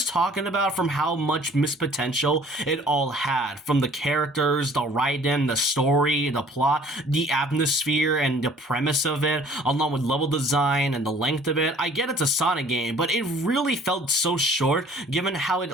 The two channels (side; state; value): both; normal; correlation 0.53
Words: talking about from how much missed potential it all had, from the characters, the writing, the story, the plot, the atmosphere, and the premise of it, along with level design and the length of it. I get it's a Sonic game, but it really felt so short given how it